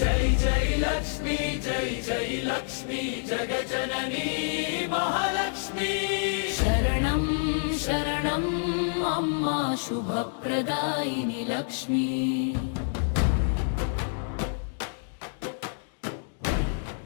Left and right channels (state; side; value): silent; right; digital silence